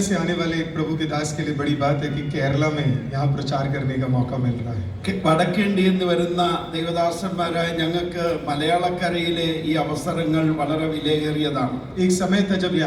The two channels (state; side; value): identical; both; correlation 1.00